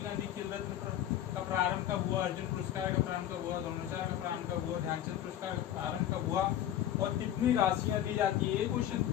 गांधी खेल रत्न का प्रारंभ कब हुआ, अर्जुन पुरस्कार का प्रारंभ कब हुआ, द्रोणाचार्य का प्रारंभ कब हुआ, ध्यानचंद पुरस्कार का प्रारंभ कब हुआ और कितनी राशियां दी जाती है। ये क्वेश्चन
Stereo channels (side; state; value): right; quieter; 11.4 dB